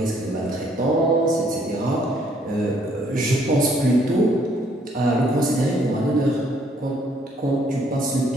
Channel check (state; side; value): normal; both; correlation 0.66